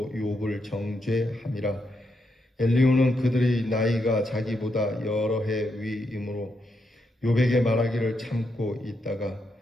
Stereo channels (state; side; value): normal; both; correlation 0.81